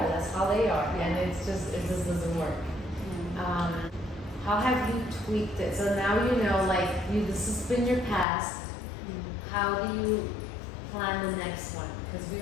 That's how they are, and it just doesn't work. How have you tweaked it? So now you know, like this has been your past. How do you plan the next one? Because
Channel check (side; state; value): right; drops out; at 8.2 s